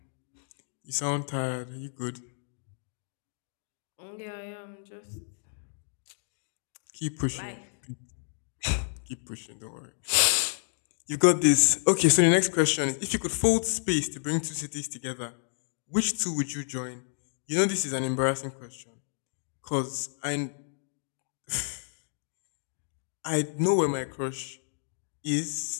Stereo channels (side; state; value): right; silent; digital silence